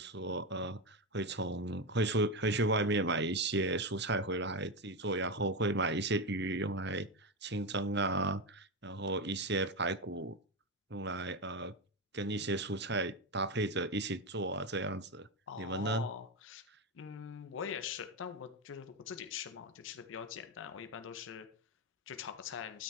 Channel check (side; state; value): both; normal; correlation 0.13